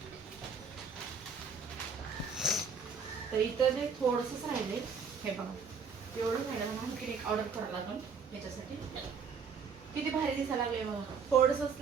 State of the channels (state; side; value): quieter; left; 5.7 dB